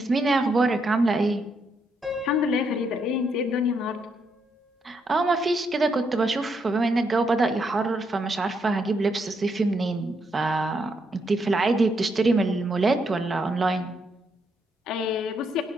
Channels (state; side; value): normal; both; correlation 0.77